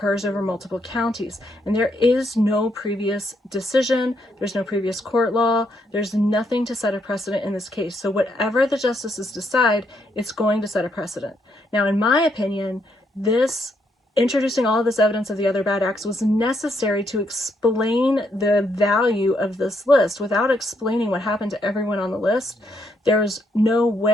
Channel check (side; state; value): both; normal; correlation 0.75